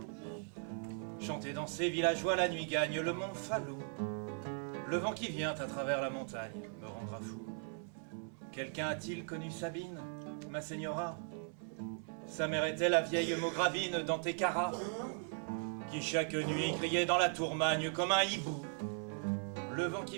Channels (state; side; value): silent; left; 52 dB below the other